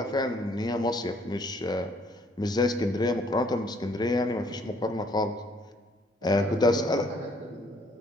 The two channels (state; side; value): normal; both; correlation 0.64